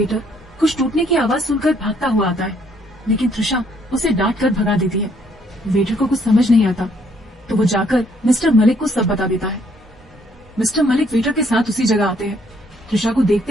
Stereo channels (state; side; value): normal; both; correlation 0.67